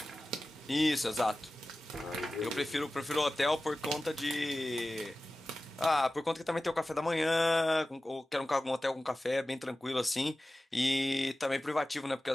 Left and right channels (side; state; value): both; normal; correlation 0.95